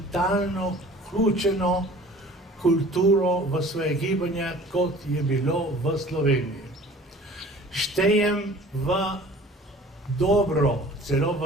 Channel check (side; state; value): both; normal; correlation 0.47